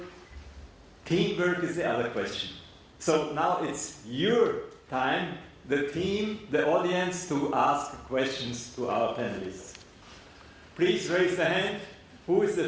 Teamwork is the other question. So now it's your time, the team, the audience, to ask questions to our panelists. Please raise the hand. Who is the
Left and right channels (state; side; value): identical; both; correlation 1.00